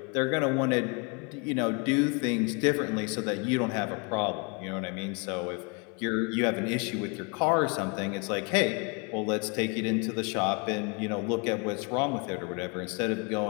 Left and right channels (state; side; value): quieter; right; 32.4 dB